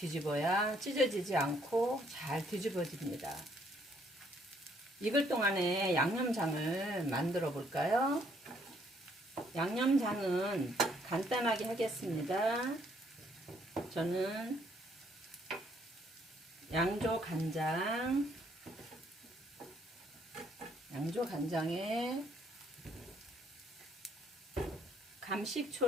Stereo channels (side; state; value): both; normal; correlation 0.67